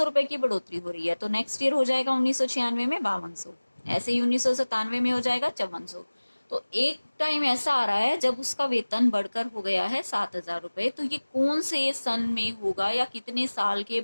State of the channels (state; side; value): inverted; both; correlation -1.00